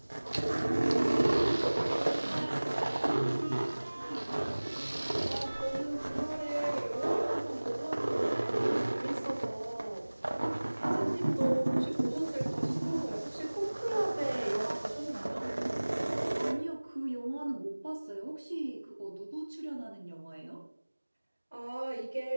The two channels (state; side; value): inverted; both; correlation -1.00